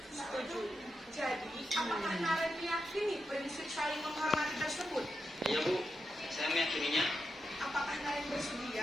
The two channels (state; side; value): normal; both; correlation 0.87